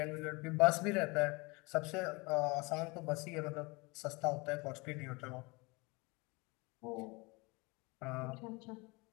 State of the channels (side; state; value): right; quieter; 26.2 dB